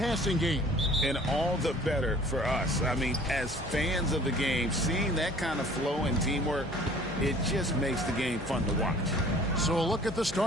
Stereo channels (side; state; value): both; normal; correlation 0.50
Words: game. And all the better for us. I mean, as fans of the game, seeing that kind of flow and teamwork, it just makes the game fun to watch. So a look at the